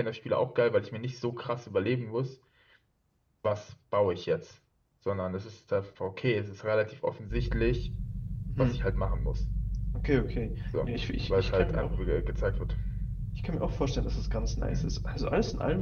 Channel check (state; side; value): identical; both; correlation 1.00